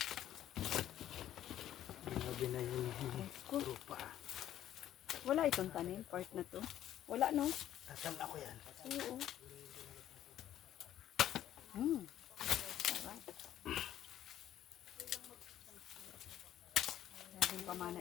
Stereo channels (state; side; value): quieter; right; 11.8 dB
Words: Grabe na yung Cool. lupa. Wala itong tanim, part na to. Wala, no? Tatam ako yan. Oo. Sarap. Laging pamana